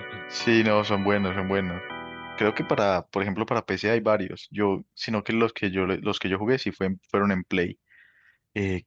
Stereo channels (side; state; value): both; identical; correlation 1.00